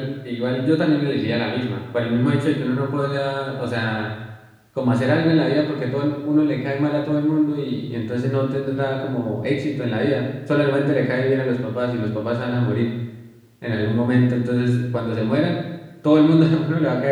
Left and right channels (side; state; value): both; identical; correlation 1.00